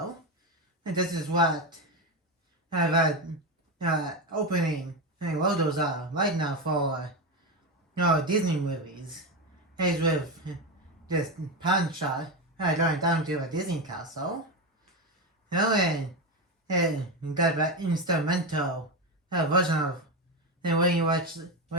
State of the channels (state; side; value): normal; both; correlation 0.14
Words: And this is what the opening logos are right now for Disney movies. It's with this pan shot going down to a Disney castle. And got the instrumental version of when you watch